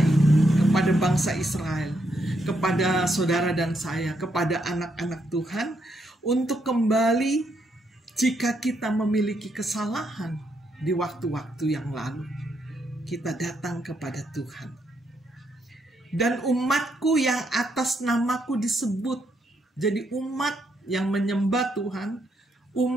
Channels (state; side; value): normal; both; correlation 0.77